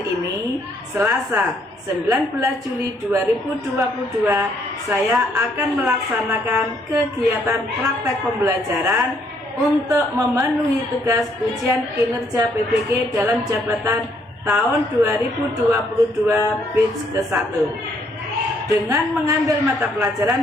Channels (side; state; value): both; normal; correlation 0.69